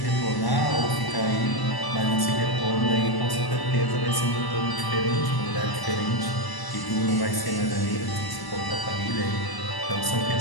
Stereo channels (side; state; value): right; late; 1.0 ms